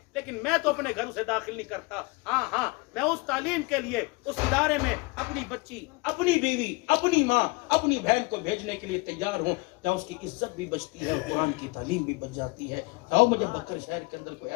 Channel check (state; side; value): quieter; right; 26.2 dB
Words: لیکن میں تو اپنے گھر سے داخل نہیں کرتا۔ ہاں میں اس تعلیم کے لیے اس ادارے میں اپنی بچی، اپنی بیوی، اپنی ماں، اپنی بہن کو بھیجنے کے لیے تیار ہوں، جہاں اس کی عزت بھی بچتی ہے اور قرآن کی تعلیم بھی بچ جاتی ہے۔ آؤ مجھے بکر شہر کے اندر کوئی